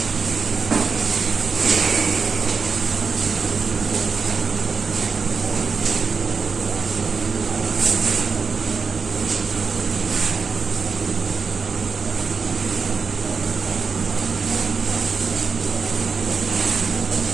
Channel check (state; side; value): quieter; left; 5.2 dB